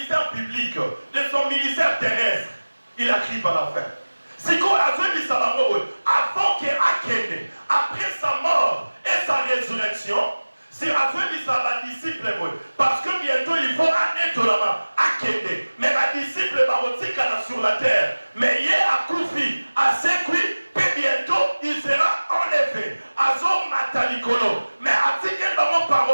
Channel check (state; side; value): inverted; both; correlation -1.00